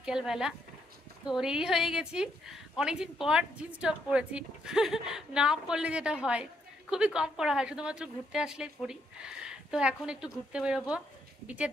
তো রেডি হয়ে গেছি, অনেকদিন পর জিন্স টপ পরেছি। না পরলে যেটা হয়, খুবই কম পরা হয়, শুধুমাত্র ঘুরতে আসলেই পরি। তো এখন একটু ঘুরতে বেরোবো, বিচের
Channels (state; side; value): normal; both; correlation 0.75